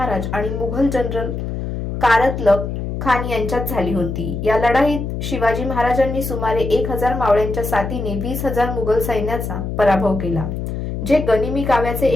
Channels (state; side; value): noise; left; hum, 4 dB below the sound